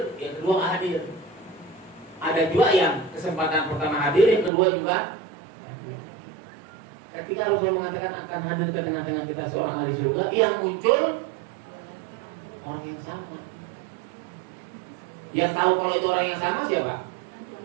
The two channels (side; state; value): left; drops out; at 4.5 s